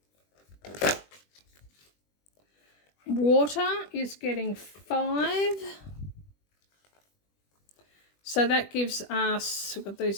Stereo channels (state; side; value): late; right; 20 ms